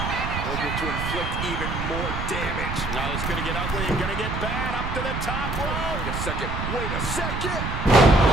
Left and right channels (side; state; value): right; noise; rumble, 4 dB below the sound